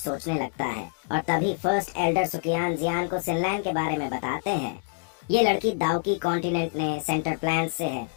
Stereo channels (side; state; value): right; silent; 58 dB below the other